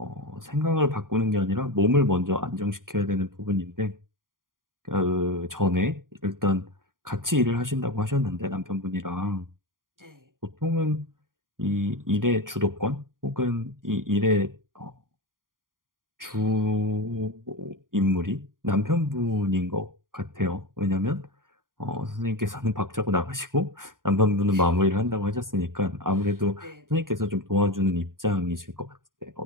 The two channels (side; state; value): left; late; 0.90 ms